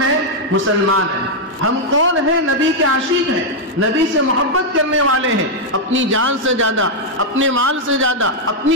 ہیں، مسلمان ہیں، ہم کون ہیں، نبی کے عاشق ہیں، نبی سے محبت کرنے والے ہیں، اپنی جان سے زیادہ، اپنے مال سے زیادہ،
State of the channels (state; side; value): normal; both; correlation -0.02